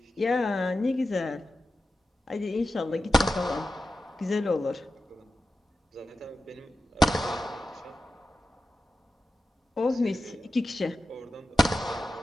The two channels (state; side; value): normal; both; correlation 0.91